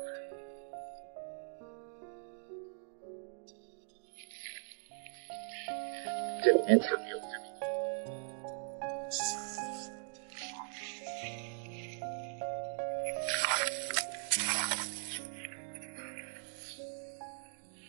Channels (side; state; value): left; silent; digital silence